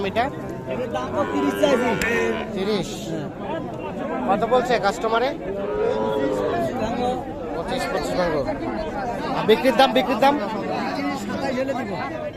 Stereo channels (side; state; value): both; identical; correlation 1.00